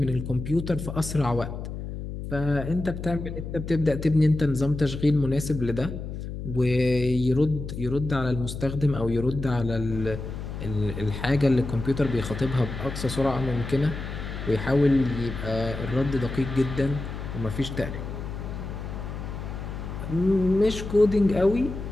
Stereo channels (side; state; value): left; noise; hum, 7 dB below the sound